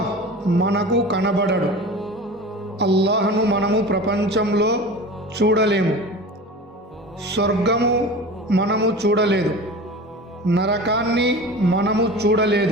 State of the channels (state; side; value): normal; both; correlation 0.35